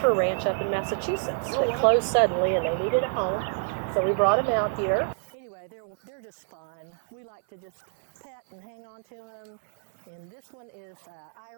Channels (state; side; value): silent; left; 59 dB below the other